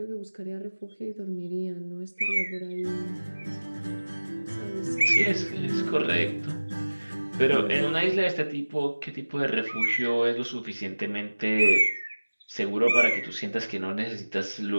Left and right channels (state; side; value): inverted; both; correlation -1.00